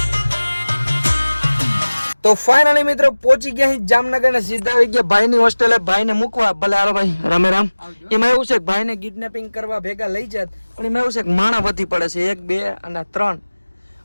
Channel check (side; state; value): both; inverted; correlation -1.00